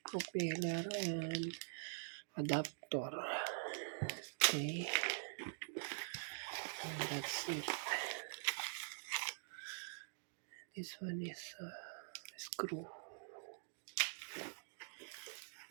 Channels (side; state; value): left; silent; digital silence